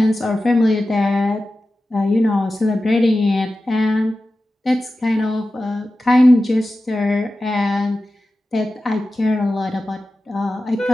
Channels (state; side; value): normal; both; correlation 0.94